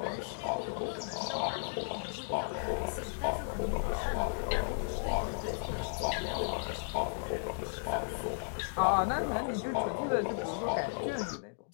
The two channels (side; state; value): right; silent; digital silence